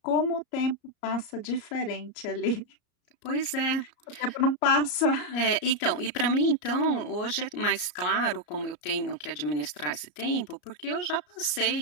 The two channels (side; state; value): right; late; 34 ms